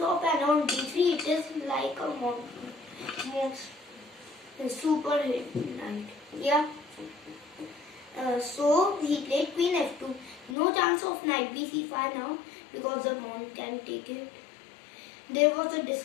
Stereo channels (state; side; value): drops out; right; at 10.6 s